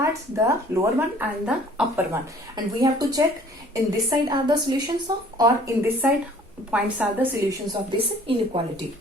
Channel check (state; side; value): normal; both; correlation 0.54